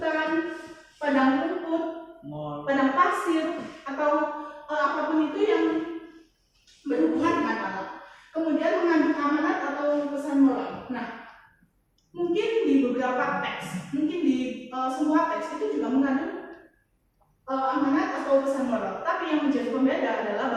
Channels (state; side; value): identical; both; correlation 1.00